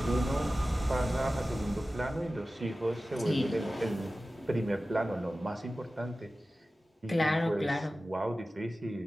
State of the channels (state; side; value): normal; both; correlation 0.95